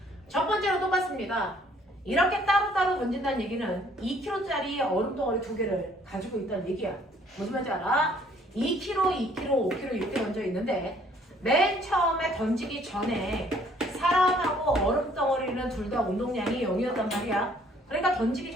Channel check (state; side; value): normal; both; correlation 0.61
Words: 첫 번째로 똑같습니다. 이렇게 따로따로 던진다는 얘기는 2kg짜리 얼음 덩어리 두 개를 가지고 있다는 얘기야. 무슨 말인지 알아? 2kg, 2kg, 5kg 이렇게 던져 있는데 맨 처음에 던지기 전에 사람하고 얼음 덩어리는 둘 다 운동량이 0이었단 말이야. 그러니까 던지기